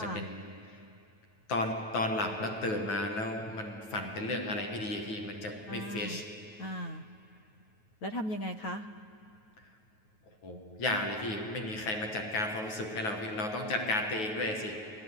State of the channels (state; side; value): late; right; 9.3 ms